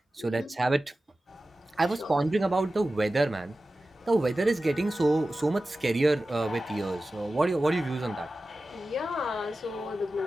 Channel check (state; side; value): normal; both; correlation 0.95